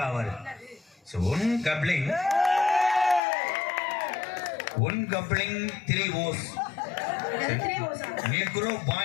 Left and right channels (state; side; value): drops out; right; at 3.2 s